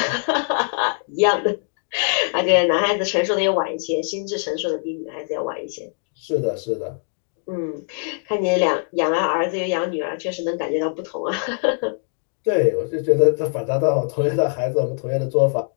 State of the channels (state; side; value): silent; right; digital silence